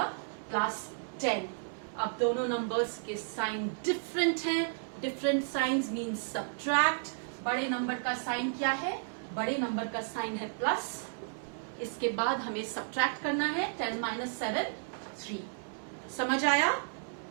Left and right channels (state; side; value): silent; left; digital silence